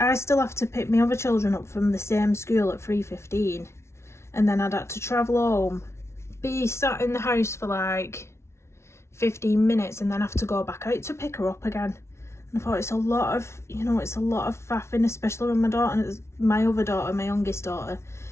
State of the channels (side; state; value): right; late; 0.13 ms